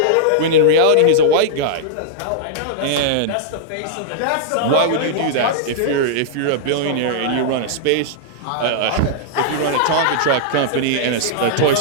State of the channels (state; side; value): different; both; correlation -0.02